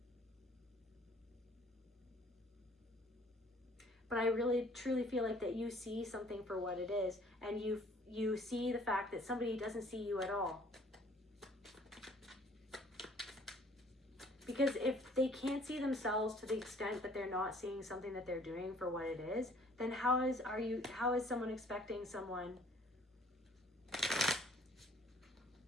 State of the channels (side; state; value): both; normal; correlation 0.57